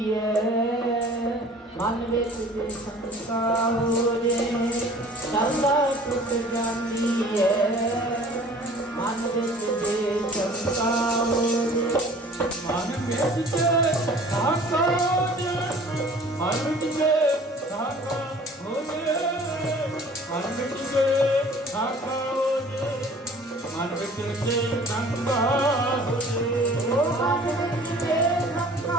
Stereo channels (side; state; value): both; normal; correlation 0.49